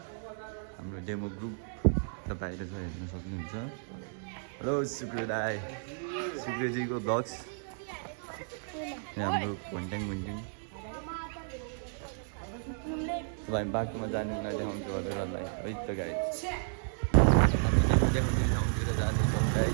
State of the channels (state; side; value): silent; left; digital silence